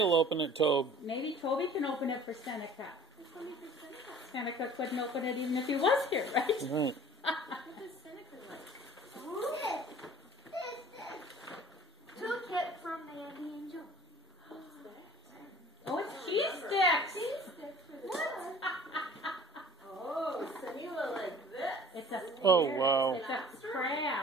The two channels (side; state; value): both; normal; correlation 0.47